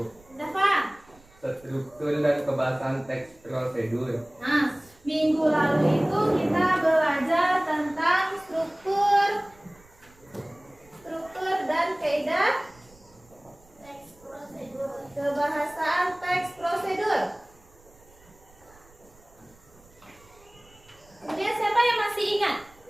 Dafa. struktur dan kebahasan teks prosedur. Nah, minggu lalu itu kita belajar tentang struktur dan kaidah teks prosedur. Kebahasaan teks prosedur. Kemudian siapa yang masih ingat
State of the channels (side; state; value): right; noise; rumble, 28 dB below the sound